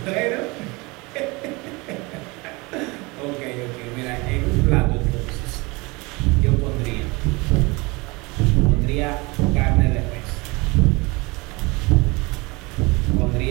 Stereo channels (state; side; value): quieter; left; 25.3 dB